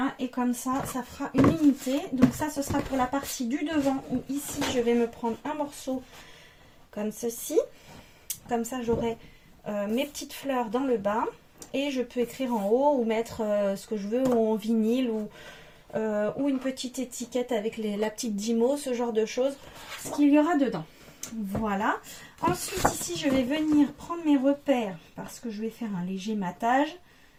et comme ça, ça fera une unité. Donc ça, ce sera pour la partie du devant, où ici, je vais me prendre un morceau comme ceci. Comme ça, j'aurai mes petites fleurs dans le bas et je peux écrire en haut ou mettre ce que je veux ou en vinyle ou une petite étiquette avec la petite Dymo, ce genre de choses, ce qu'il y aura dedans. Voilà. Ensuite ici je vais venir prendre mes repères parce que je vais faire un léger matage.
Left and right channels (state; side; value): identical; both; correlation 1.00